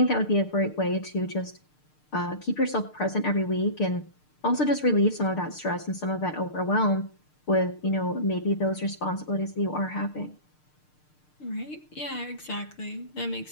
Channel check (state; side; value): late; right; 6.6 ms